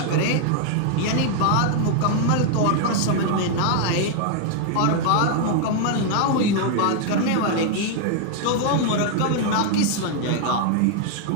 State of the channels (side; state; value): both; different; correlation 0.00